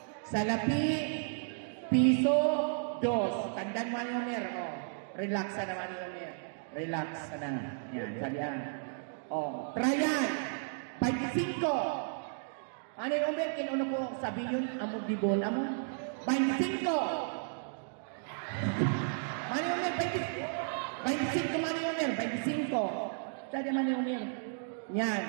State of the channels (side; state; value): left; silent; digital silence